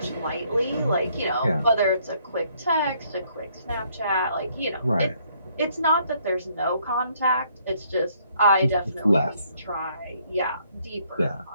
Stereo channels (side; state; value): both; inverted; correlation -0.67